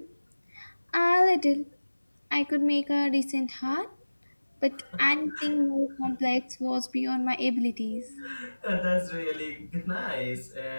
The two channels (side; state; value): both; inverted; correlation -1.00